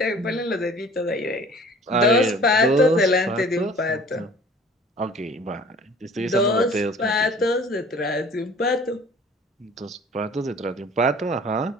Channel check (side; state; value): both; normal; correlation 0.48